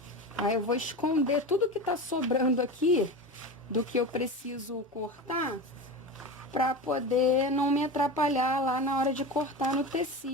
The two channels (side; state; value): both; normal; correlation 0.26